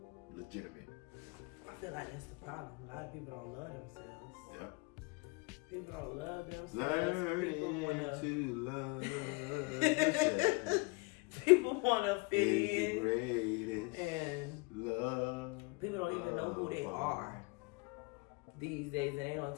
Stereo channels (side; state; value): right; quieter; 29.1 dB